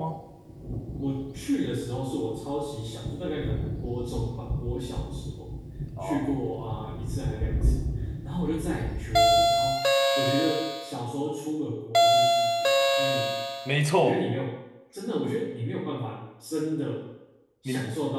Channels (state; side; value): identical; both; correlation 1.00